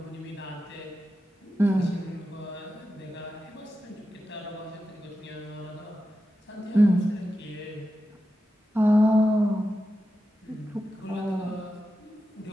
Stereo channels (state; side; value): normal; both; correlation 0.90